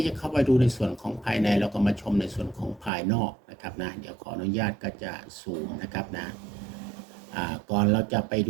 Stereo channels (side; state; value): left; drops out; at 2.9 s